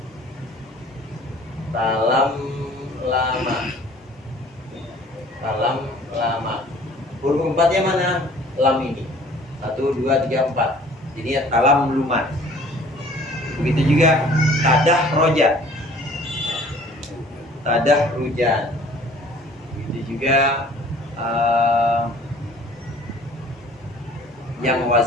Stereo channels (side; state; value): both; normal; correlation 0.52